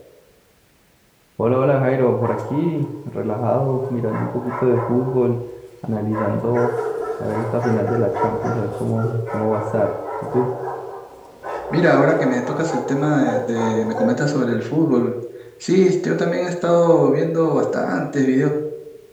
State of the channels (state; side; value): identical; both; correlation 1.00